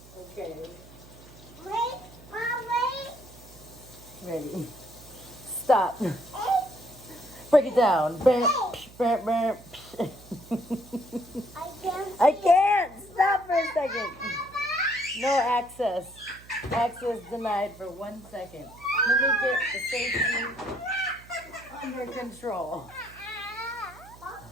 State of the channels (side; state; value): right; noise; hum, 21 dB below the sound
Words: Okay, Wait, Mom, wait. ready. Stop. Egg. Break it down. Bam, bam, bam. I can't. Stop for a second. No access. Access denied for 1 second. Let me get the safety under control.